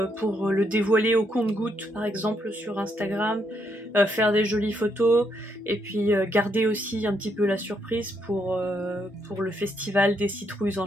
dévoiler au compte-gouttes par exemple sur Instagram, faire des jolies photos et puis garder aussi un petit peu la surprise pour le festival des citrouilles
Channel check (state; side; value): normal; both; correlation 0.76